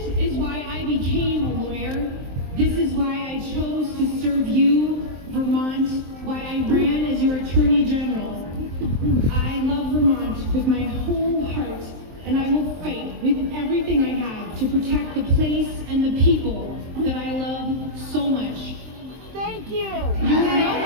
is why I became a lawyer. This is why I chose to serve you, I love Vermont with my whole heart, and I will fight with everything I have to protect the place and the people that I love so much. Thank you. You're welcome.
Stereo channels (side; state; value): left; late; 23 ms